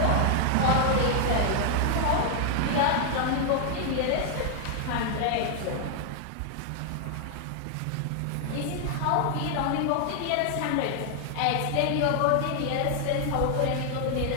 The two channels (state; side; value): different; both; correlation 0.00